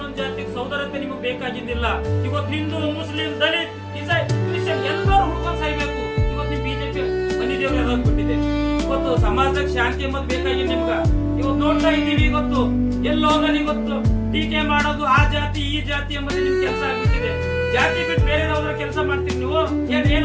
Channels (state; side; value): identical; both; correlation 1.00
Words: ಜಾತಿಗೆ ಸೌದರತೆ ನಿಮಗೆ ಬೇಕಾಗಿದ್ದಿಲ್ಲ. ಇವತ್ತು ಹಿಂದೂ, ಮುಸ್ಲಿಂ, ದಲಿತ್, ಕ್ರಿಶ್ಚಿಯನ್ ಎಲ್ಲರೂ ಹುಡ್ಕೊಂಡು ಸಾಯ್ಬೇಕು. ಇವತ್ತು ನಿಮ್ ಬಿಜೆಪಿ ಮನಿ ದೇವ್ರು ಯಾವ್ದಾಗ್ಬಿಟ್ಟಿದೆ. ಇವತ್ತು ಸಮಾಜದಾಗ ಶಾಂತಿ ಎಂಬುದು ಬೇಕಾಗಿದೆ ನಿಮ್ಗ. ಇವತ್ತು ನೋಡ್ತಾ ಇದ್ದೀವಿ, ಇವತ್ತು ಎಲ್ಲೋದಲ್ಲಿ ಇವತ್ತು ಟೀಕೆ ಮಾಡೋದು ಆ ಜಾತಿ ಈ ಜಾತಿ ಎಂಬುದು ನಿಮ್ ಕೆಲಸ ಆಗ್ಬಿಟ್ಟಿದೆ. ಜಾತಿ ಬಿಟ್ಟು ಬೇರೆ ಯಾವ್ದಾರ ಕೆಲಸ ಮಾಡ್ತೀರಿ ನೀವು? ಏನ್